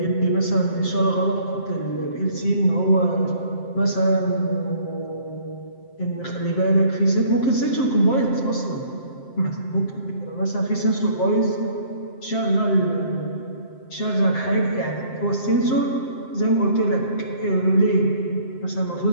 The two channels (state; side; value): late; right; 7.6 ms